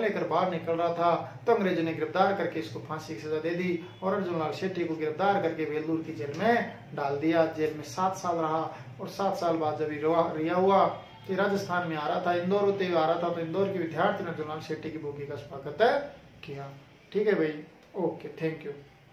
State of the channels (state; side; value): identical; both; correlation 1.00